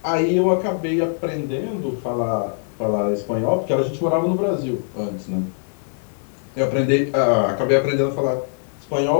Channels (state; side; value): silent; right; digital silence